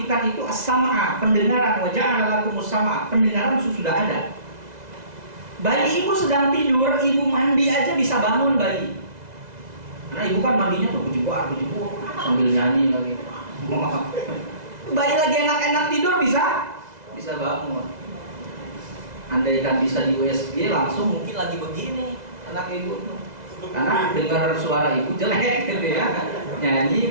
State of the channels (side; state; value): left; late; 2.0 ms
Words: itu as-sam'a, pendengaran. Wa ja'ala lakumus sam'a, pendengaran sudah ada. Bayi ibu sedang tidur, ibu mandi aja bisa bangun bayi. Karena ibu kan mandinya tuh bujibuk sambil nyanyi lagi. Bayi lagi enak-enak tidur bisa bangun. Andaikan bisa di USG langsung mungkin lagi begini anak ibu tuh. Karena dengar suara ibu jelek gitu ya. Nyanyi,